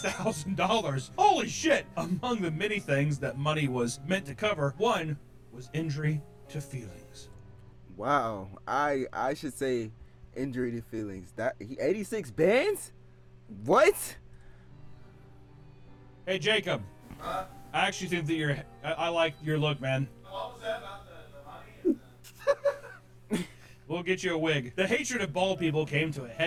Holy shit! Among the many things that money was meant to cover, one was injury to feelings. Wow. I should say injury to feelings. That 86 bands? What? Hey, Jacob. I actually think that I like your look, man. What was that about the money? We'll get you a wig. The hatred of bald people came to a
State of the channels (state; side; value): identical; both; correlation 1.00